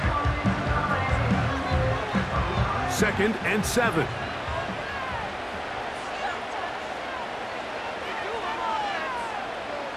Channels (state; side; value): identical; both; correlation 1.00